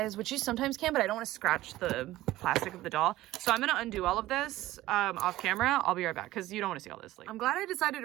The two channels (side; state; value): left; quieter; 16.2 dB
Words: which you sometimes can, but I don't want to scratch the plastic of the doll. So I'm going to undo all of this off camera. I'll be right back because you don't want to see all this. Like, I'm glad I decided